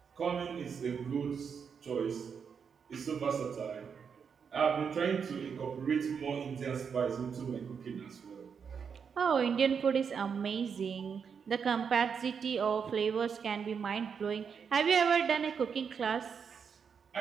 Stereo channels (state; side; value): quieter; left; 6.5 dB